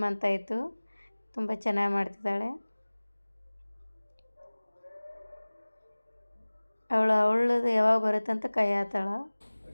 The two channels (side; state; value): both; inverted; correlation -1.00